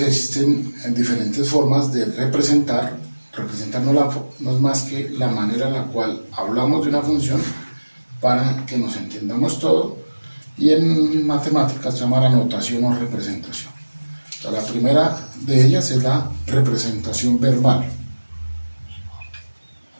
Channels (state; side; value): inverted; both; correlation -1.00